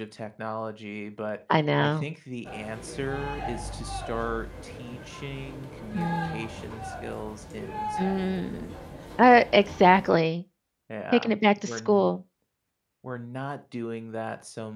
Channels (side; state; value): both; identical; correlation 1.00